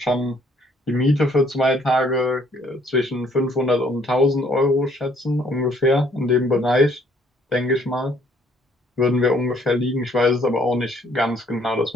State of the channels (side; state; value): both; normal; correlation 0.63